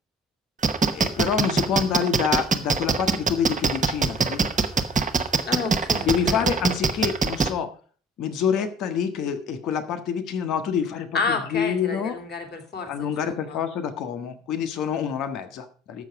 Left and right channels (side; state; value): both; normal; correlation 0.50